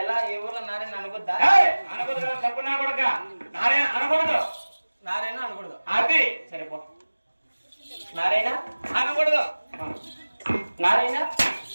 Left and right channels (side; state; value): both; inverted; correlation -1.00